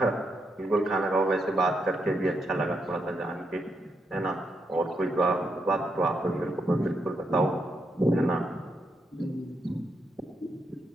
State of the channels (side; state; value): both; normal; correlation 0.81